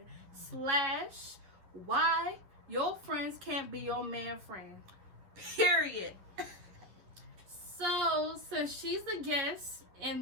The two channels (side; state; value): left; late; 11 ms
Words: / why your friends can't be your man friend. Period. So, since she's the guest